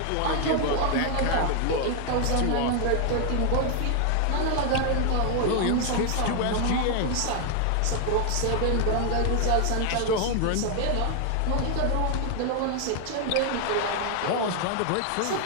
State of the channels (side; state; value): both; different; correlation 0.00